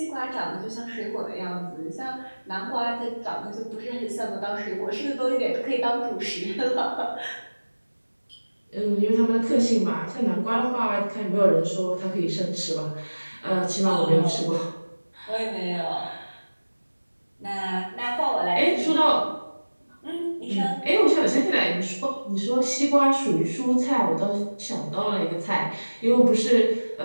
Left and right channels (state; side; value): inverted; both; correlation -1.00